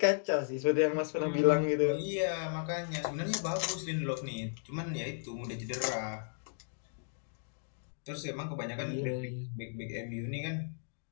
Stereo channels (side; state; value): right; silent; digital silence